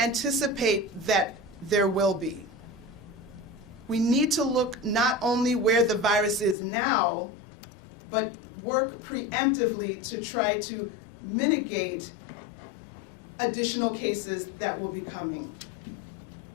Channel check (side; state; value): right; drops out; at 6.6 s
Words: that there will be. We need to look not only where the virus is now, but work preemptively to try to mitigate additional cases that will be coming.